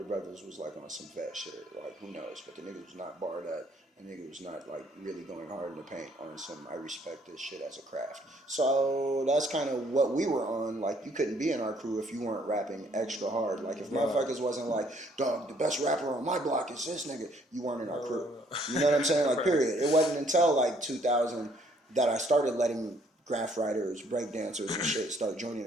brothers was on some vet shit. Who knows? But the nigga was not barred up. The nigga was not really going hard in the paint on some I respect this shit as a craft. So that's kind of what we were on. You couldn't be in our crew if you weren't rapping extra hard. If motherfuckers wasn't dog, the best rapper on my block is this nigga, you weren't in our crew. You know what I'm saying? Period. It wasn't until 2000 that I started letting graph writers, break dancers and shit start joining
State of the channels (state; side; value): normal; both; correlation 0.64